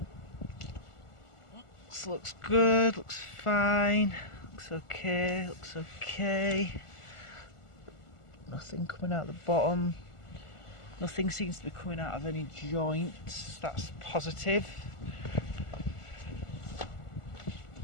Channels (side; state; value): right; late; 1.4 ms